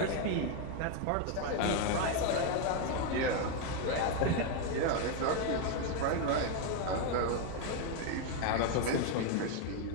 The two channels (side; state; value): both; different; correlation 0.01